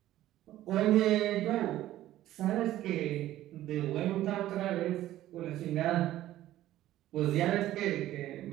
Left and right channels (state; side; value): quieter; left; 14.1 dB